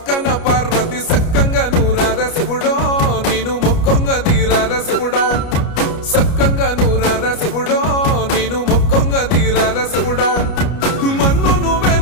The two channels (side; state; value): right; late; 29 ms